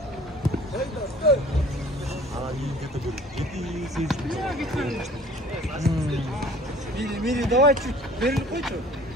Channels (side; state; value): both; normal; correlation 0.50